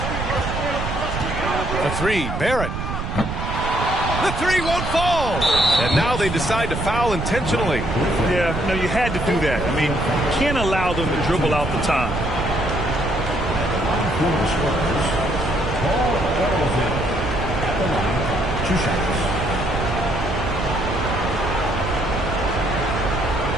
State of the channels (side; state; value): right; noise; rumble, 4 dB below the sound